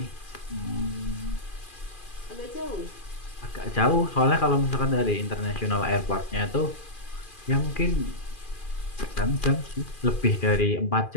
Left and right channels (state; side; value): late; right; 2.4 ms